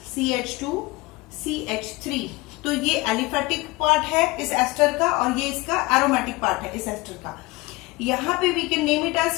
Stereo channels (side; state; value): right; quieter; 22.3 dB